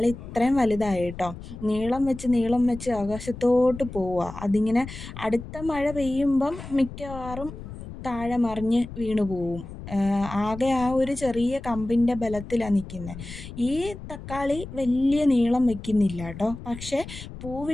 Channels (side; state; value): left; noise; rumble, 12 dB below the sound